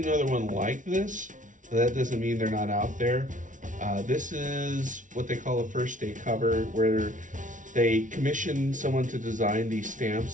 another one like this, but that doesn't mean they're not out there. This is what they call a first day cover, where they commission someone to design these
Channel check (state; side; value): late; left; 0.37 ms